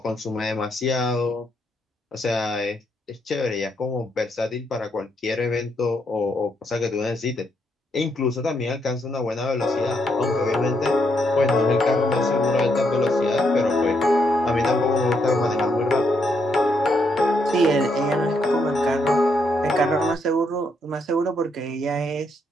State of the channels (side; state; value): both; normal; correlation 0.76